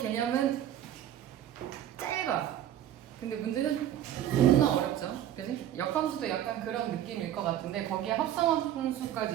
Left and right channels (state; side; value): quieter; left; 11.3 dB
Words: 짧아. 근데 문제는 존나 어렵죠. 그지? 역함수도 약간 그런 느낌일 것 같은데 거기에